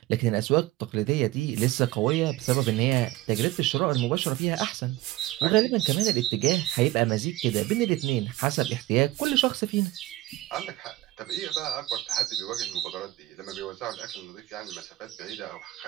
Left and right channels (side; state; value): left; quieter; 17.1 dB